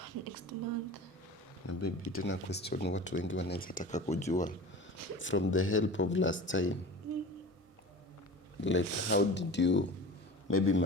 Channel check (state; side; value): normal; both; correlation 0.35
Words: next month. Na baby, tena question watu wengi wanaweza taka kujua from the help of last time. Like how did you maybe